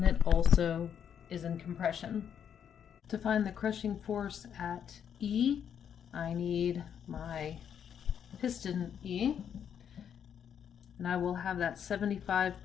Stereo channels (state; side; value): quieter; right; 8.4 dB